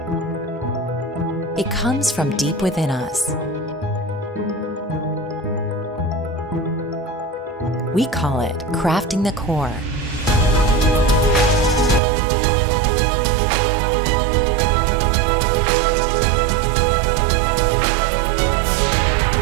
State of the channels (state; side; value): drops out; left; at 12.0 s